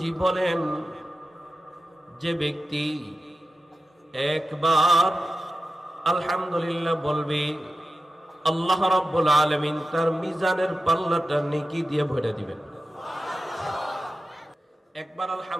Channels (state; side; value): normal; both; correlation 0.93